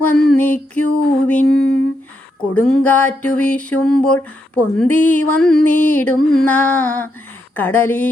വന്ദിക്കുവിൻ. കൊടുങ്കാറ്റു വീശുമ്പോൾ പൊന്തി വന്നിടുന്ന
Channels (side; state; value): both; normal; correlation 0.81